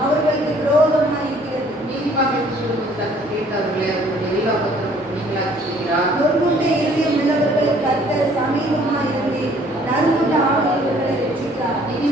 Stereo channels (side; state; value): both; normal; correlation 0.58